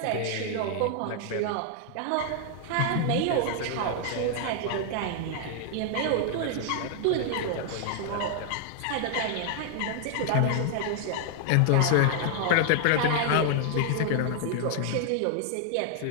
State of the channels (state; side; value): different; both; correlation 0.00